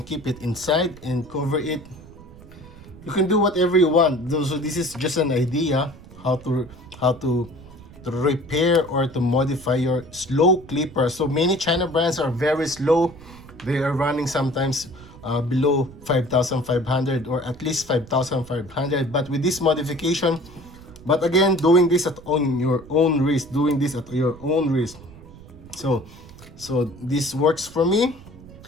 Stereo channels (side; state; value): right; noise; rumble, 19 dB below the sound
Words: keep it inside and cover it. You can do whatever you want. So this is just an idea how to repair or to modify your slow clipper. So many China brands are very slow. They are running sometimes below 5,500 or at least 5,500. But with this modification, but again, doing this on your own risk, So this works for me.